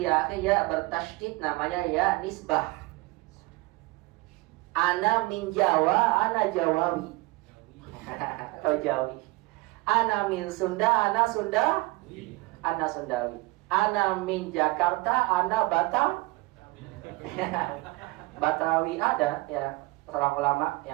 akhir ya bertasydid, namanya ya nisbah. Ana min Jawa, ana Jawawi. Atau Jawi. Ana min Sunda, ana Sunda, ana Sundawi. Ana min Jakarta, ana Batam. Batawi ada ya, seorang ulama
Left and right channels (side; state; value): left; quieter; 22.8 dB